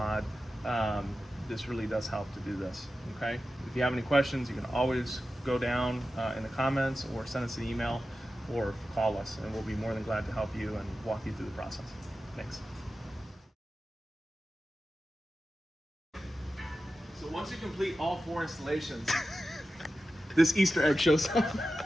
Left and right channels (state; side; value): normal; both; correlation 0.93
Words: This really does help to do this, okay? If you have any questions, you can always go down in the comments or send us an email or call us, and we'll be more than glad to help you and walk you through the process. Thanks. So once you complete all 4 installations, this Easter egg shows up.